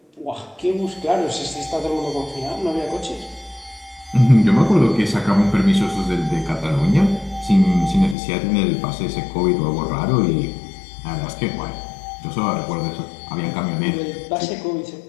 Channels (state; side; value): drops out; right; at 8.2 s